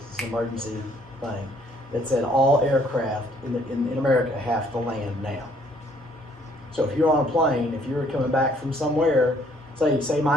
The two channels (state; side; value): normal; both; correlation 0.63